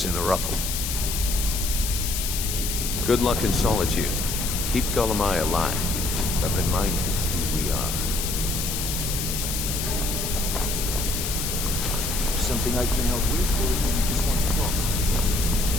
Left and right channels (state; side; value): noise; left; hiss, 3 dB below the sound